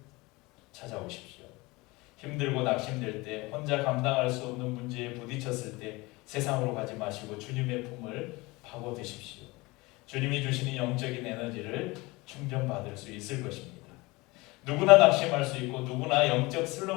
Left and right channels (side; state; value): right; quieter; 23.1 dB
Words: 찾아오십시오. 힘들고 낙심될 때, 혼자 감당할 수 없는 문제에 부딪혔을 때 세상으로 가지 마시고 주님의 품을 파고드십시오. 주님이 주시는 영적인 에너지를 충전받을 수 있을 것입니다. 누구나 낙심할 수 있고 누구나 영적